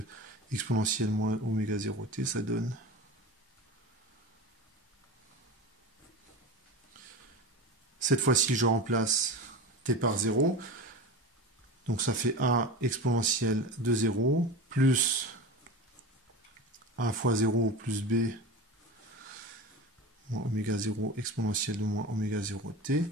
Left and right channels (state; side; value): normal; both; correlation 0.29